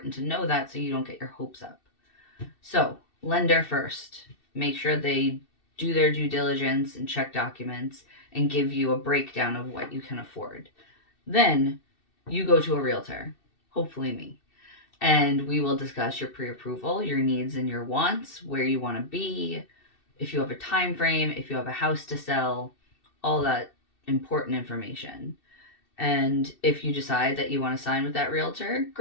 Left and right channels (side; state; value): right; late; 2.7 ms